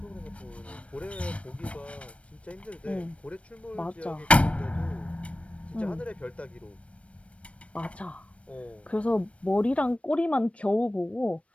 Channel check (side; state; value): right; late; 0.063 ms